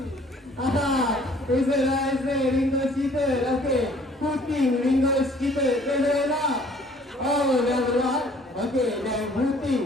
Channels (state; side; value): normal; both; correlation 0.57